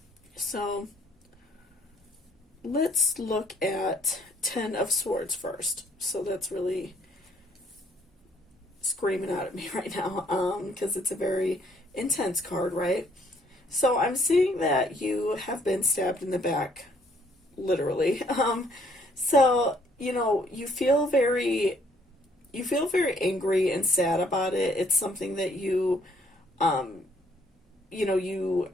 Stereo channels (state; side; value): normal; both; correlation 0.65